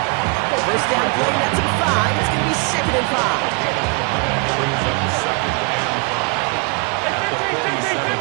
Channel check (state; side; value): quieter; left; 32.5 dB